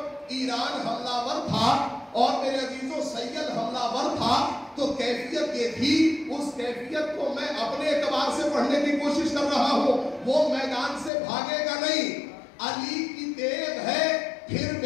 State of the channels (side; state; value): right; drops out; at 11.1 s